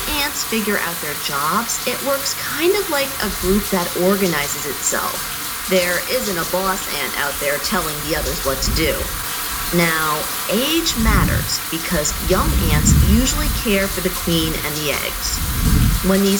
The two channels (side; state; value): both; identical; correlation 1.00